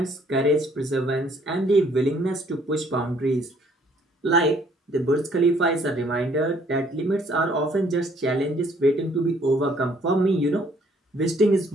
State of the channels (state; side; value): normal; both; correlation 0.63